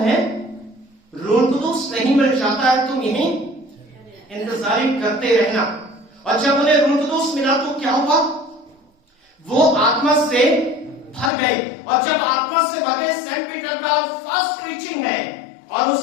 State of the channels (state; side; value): drops out; right; at 11.3 s